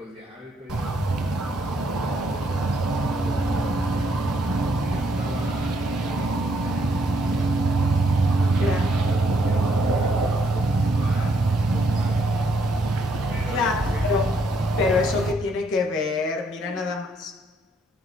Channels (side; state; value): both; normal; correlation 0.72